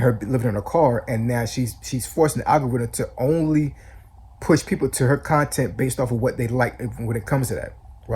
her living in a car, and now she's forcing the algorithm to only push people to her content based off of what they like when it comes to that,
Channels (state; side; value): identical; both; correlation 1.00